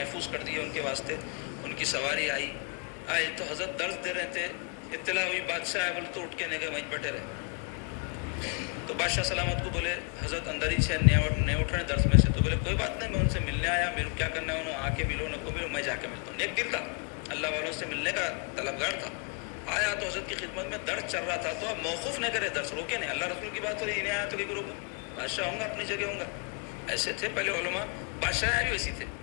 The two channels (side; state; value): right; quieter; 36.5 dB